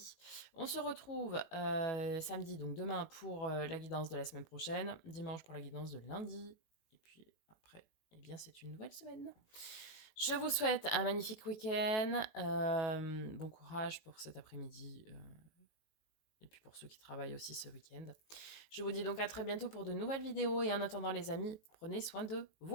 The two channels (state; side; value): late; right; 19 ms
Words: On se retrouve samedi, donc demain pour la guidance de la semaine prochaine, dimanche pour la guidance de lundi, et puis après, eh bien c'est une nouvelle semaine. Je vous souhaite un magnifique week-end. Bon courage pour cet après-midi. Et puis pour ceux qui travaillent aussi ce week-end. Je vous dis donc à très bientôt pour de nouvelles vidéos. Et en attendant les amis, prenez soin de